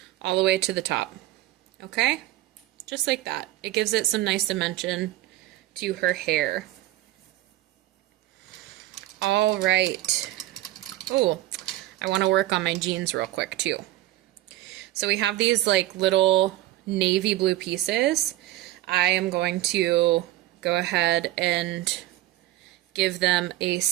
all the way to the top. Okay? Just like that. It gives it some nice dimension to her hair. All right. Oh, I want to work on my jeans real quick too. So we have these like little navy blue pieces. I am going to go ahead and give them a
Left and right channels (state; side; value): quieter; left; 15.5 dB